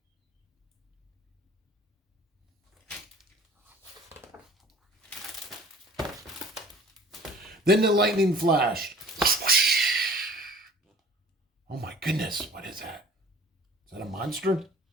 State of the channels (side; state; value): both; normal; correlation 0.49